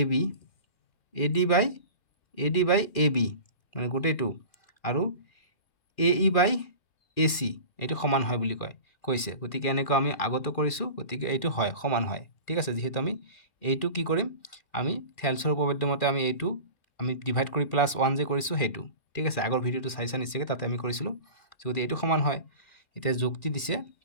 AB মানে গোটেইটো আৰু AE বাই AC এইটো সমান হয় বুলি কৈছে গতিকে এনেকুৱা আমি আগতে কৰিছো গতিকে এইটো হয় সমান হয় ঠিক আছে যেহেতু আমি এইটো কি কৰিম আমি থেলছৰ উপপাদ্য মতে আমি এইটো আমি ডিভাইড কৰি +1 যে কৰিছো হেতু ঠিক আছে আগৰ ভিডিওটো চাইছা নিশ্চয় তাতে আমি কৰিছিলো যদি এইটো সমান হয় এতিয়া যুক্তি দিছে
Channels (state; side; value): late; right; 2.4 ms